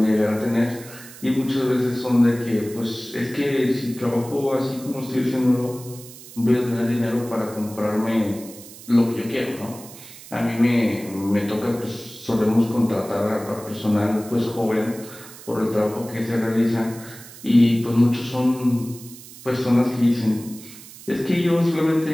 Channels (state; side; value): noise; right; hiss, 17 dB below the sound